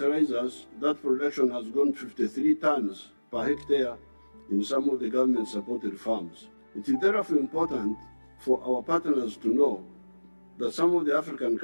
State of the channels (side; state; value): both; inverted; correlation -1.00